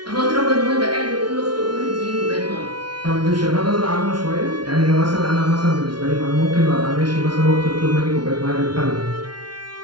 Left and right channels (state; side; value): late; left; 0.71 ms